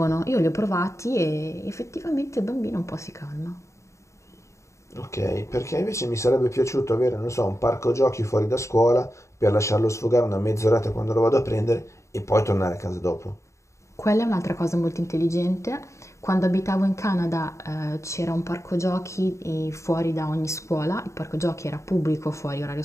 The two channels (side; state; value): right; late; 0.14 ms